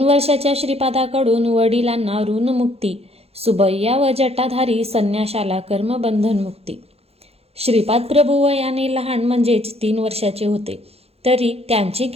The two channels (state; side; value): late; left; 0.29 ms